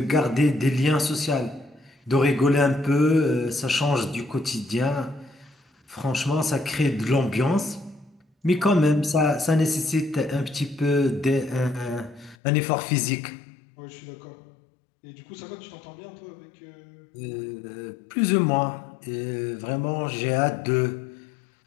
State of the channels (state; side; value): drops out; right; at 12.4 s